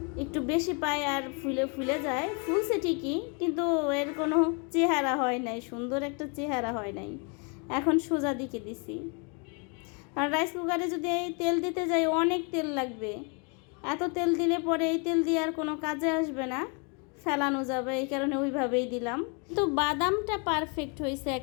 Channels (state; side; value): quieter; right; 35.5 dB